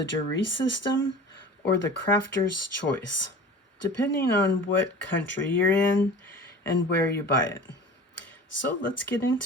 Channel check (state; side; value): normal; both; correlation 0.38